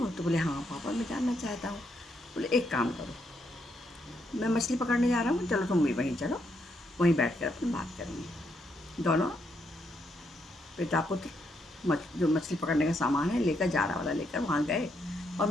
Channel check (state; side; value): normal; both; correlation 0.77